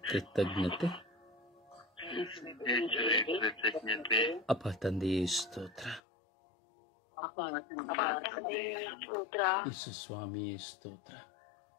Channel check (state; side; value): drops out; right; at 6.0 s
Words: ಕೃತಜ್ಞತೆ. ಅಪ್ಪ ತಂದೆಯೇ ಸ್ತೋತ್ರ, ಯೇಸು ಸ್ವಾಮಿಯೇ ಸ್ತೋತ್ರ,